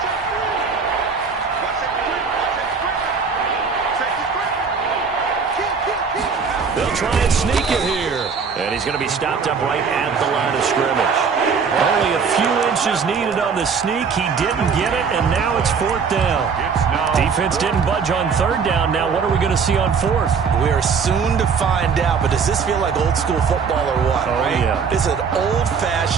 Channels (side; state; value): left; quieter; 5.8 dB